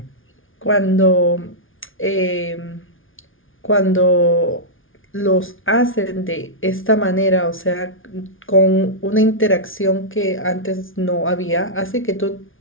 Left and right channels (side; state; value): right; late; 0.58 ms